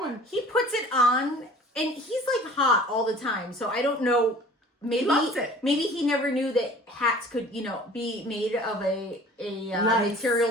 He puts it on, and he's like hot all the time. So I don't know. Maybe He loves it. Maybe he never knew that hats could, be made of a Nice.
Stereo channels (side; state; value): both; normal; correlation 0.47